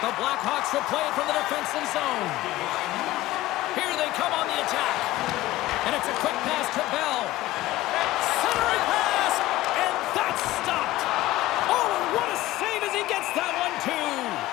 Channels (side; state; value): right; quieter; 16.5 dB